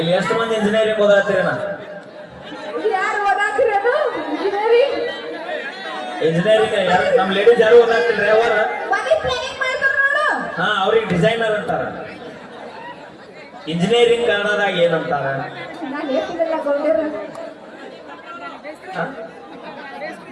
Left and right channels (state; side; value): identical; both; correlation 1.00